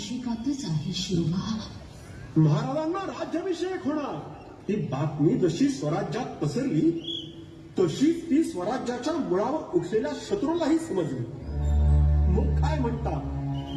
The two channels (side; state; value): both; identical; correlation 1.00